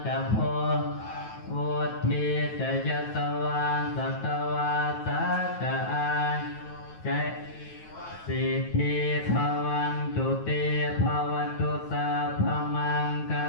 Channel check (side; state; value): right; late; 9.3 ms